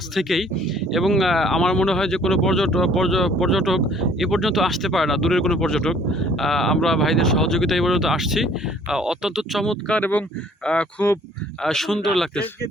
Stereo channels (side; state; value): both; normal; correlation 0.57